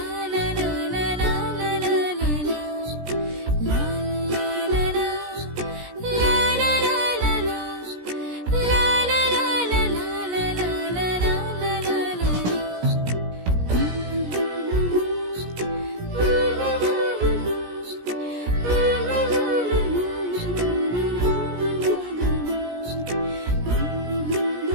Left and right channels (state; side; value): late; left; 17 ms